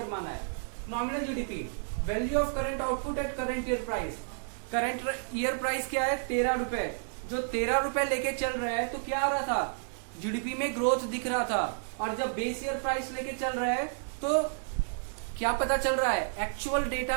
माना है। Nominal GDP value of current output at current year price. Current year price क्या है? 13 रुपए। जो 13 रुपए लेके चल रहे हैं तो क्या आ रहा था? जीडीपी में ग्रोथ दिख रहा था। और जब बेस ईयर प्राइस लेके चल रहे हैं तो क्या पता चल रहा है? एक्चुअल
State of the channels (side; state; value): left; silent; digital silence